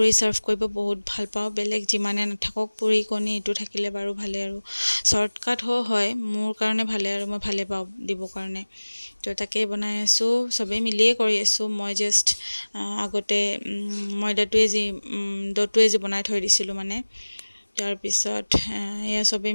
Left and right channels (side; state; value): both; inverted; correlation -1.00